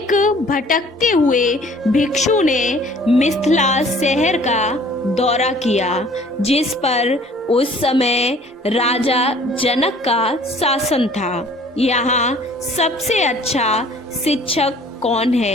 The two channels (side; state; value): both; normal; correlation 0.53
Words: भटकते हुए भिक्षु ने मिथिला शहर का दौरा किया, जिस पर उस समय राजा जनक का शासन था। यहाँ सबसे अच्छा शिक्षक कौन